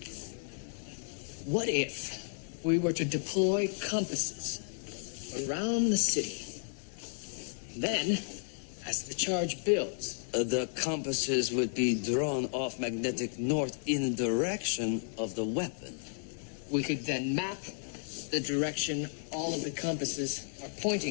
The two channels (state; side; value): silent; right; 56 dB below the other